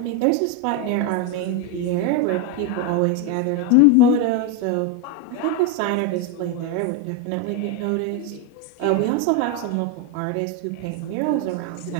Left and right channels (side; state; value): both; different; correlation 0.02